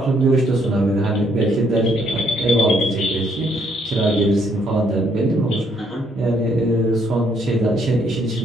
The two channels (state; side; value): normal; both; correlation 0.70